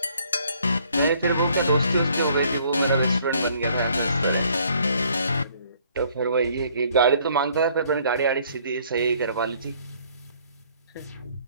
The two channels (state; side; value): inverted; both; correlation -0.62